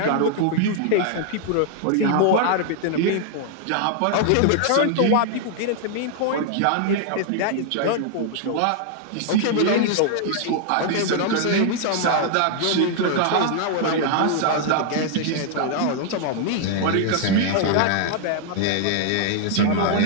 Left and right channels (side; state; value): both; different; correlation 0.00